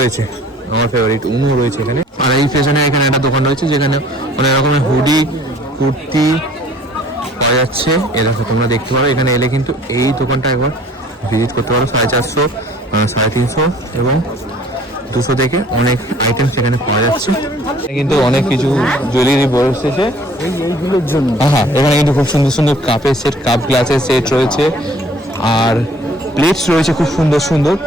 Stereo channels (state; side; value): normal; both; correlation 0.54